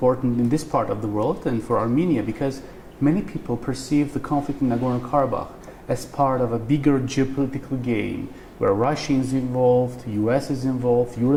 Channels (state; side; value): identical; both; correlation 1.00